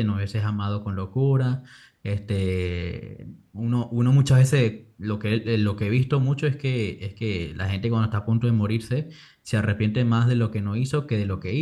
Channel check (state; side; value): identical; both; correlation 1.00